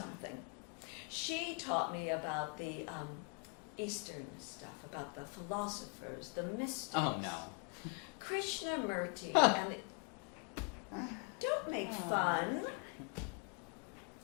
She taught me about the Eastern stuff, about the philosophers, the mystics. Oh, no. Krishnamurti. And don't make fun.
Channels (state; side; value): quieter; right; 33.2 dB